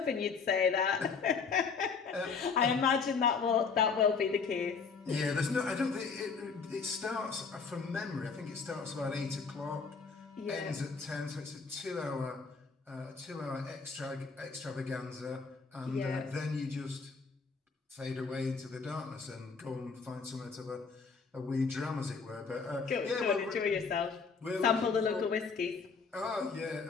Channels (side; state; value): right; quieter; 5.2 dB